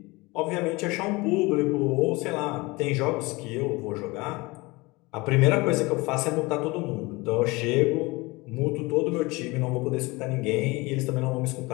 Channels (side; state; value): right; quieter; 23.7 dB